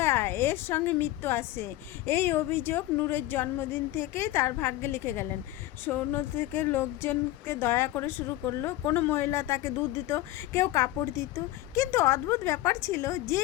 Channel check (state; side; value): quieter; right; 15.6 dB